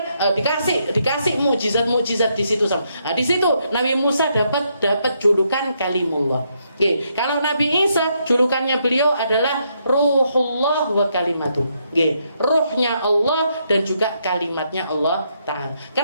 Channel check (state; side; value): inverted; both; correlation -0.77